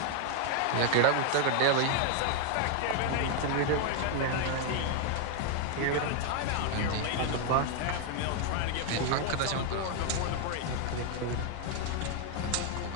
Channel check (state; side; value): different; both; correlation 0.00